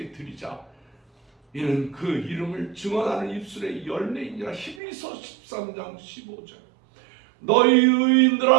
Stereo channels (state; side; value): drops out; left; at 4.8 s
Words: 드리자. 이는 그 이름을 증언하는 입술의 열매이니라. 히브리서 13장 15절. 너희